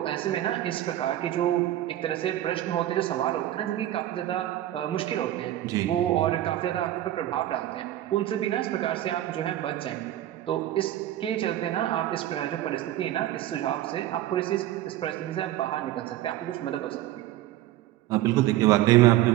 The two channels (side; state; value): left; quieter; 13.8 dB